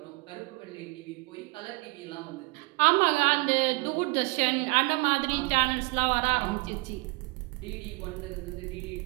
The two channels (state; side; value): quieter; left; 26.8 dB